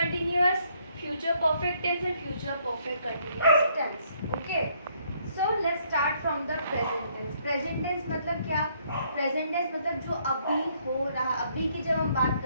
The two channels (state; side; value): inverted; both; correlation -0.68